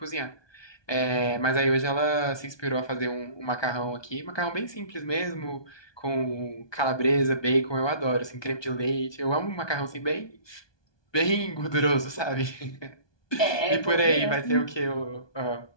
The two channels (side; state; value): right; late; 1.2 ms